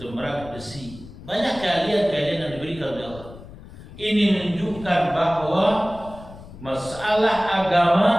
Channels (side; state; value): left; noise; rumble, 17 dB below the sound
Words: merakit besi. Banyak keahlian-keahlian yang diberikan oleh Allah. Ini menunjukkan bahwa masalah agama